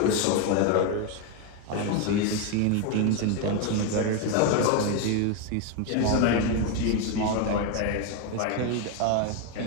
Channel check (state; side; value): different; both; correlation 0.02